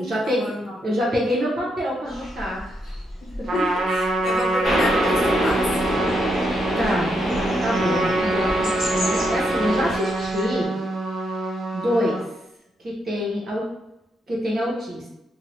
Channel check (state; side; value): normal; both; correlation 0.79